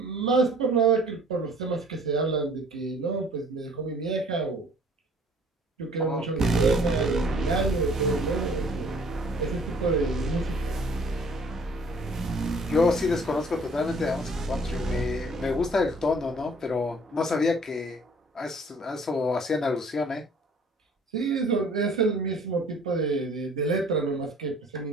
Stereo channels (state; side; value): normal; both; correlation 0.55